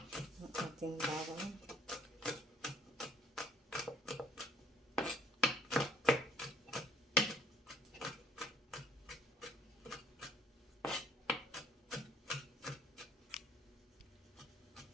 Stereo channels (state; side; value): normal; both; correlation 0.60